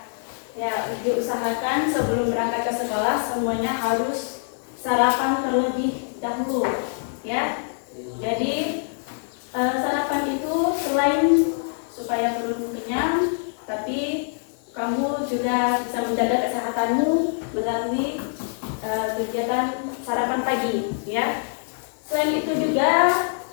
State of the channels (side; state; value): right; silent; 62 dB below the other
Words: Ya, diusahakan sebelum berangkat ke sekolah semuanya harus sarapan terlebih dahulu, ya. Jadi sarapan itu selain supaya perut kenyang, tapi kamu juga bisa menjaga kesehatanmu melalui kegiatan sarapan pagi, ya. Selain itu juga